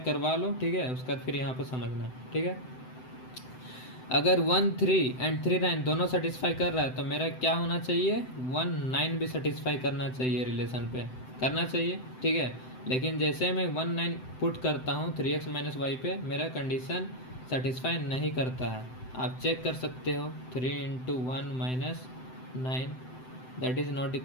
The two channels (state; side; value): late; right; 7.8 ms